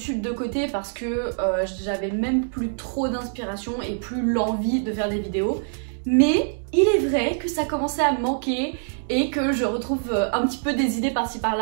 de côté parce que j'avais même plus trop d'inspiration et plus l'envie de faire des vidéos. Mais il est vrai que ça commençait à me manquer et que je retrouve un petit peu des idées par-ci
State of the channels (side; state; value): left; silent; digital silence